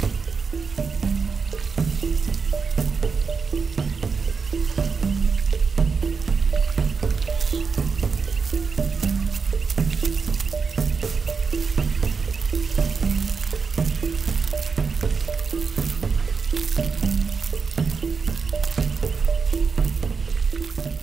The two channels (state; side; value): quieter; left; 5.2 dB